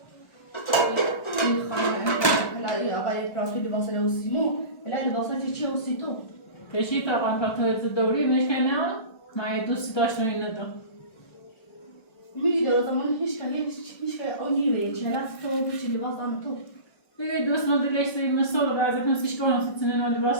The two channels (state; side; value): late; right; 1.3 ms